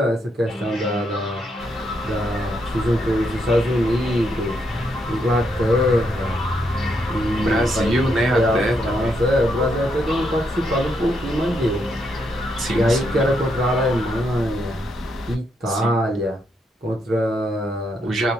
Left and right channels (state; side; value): normal; both; correlation 0.78